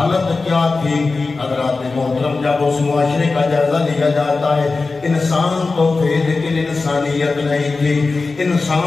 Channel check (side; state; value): right; quieter; 3.9 dB